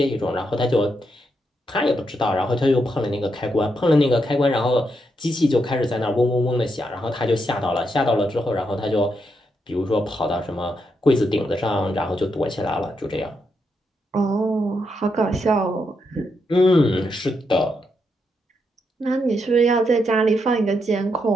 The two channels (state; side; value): normal; both; correlation 0.81